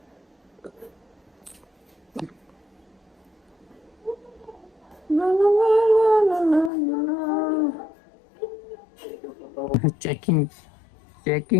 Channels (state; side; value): drops out; right; at 6.7 s